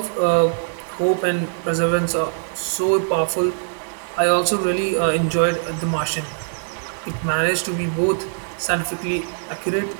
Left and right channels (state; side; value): silent; left; digital silence